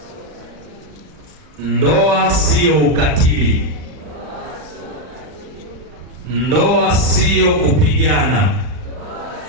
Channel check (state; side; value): late; left; 40 ms